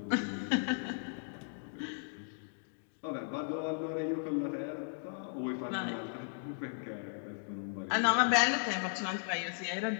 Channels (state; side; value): silent; right; digital silence